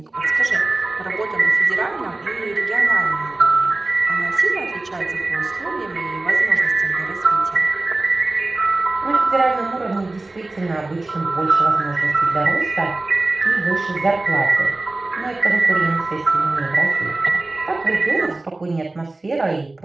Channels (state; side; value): quieter; left; 3.0 dB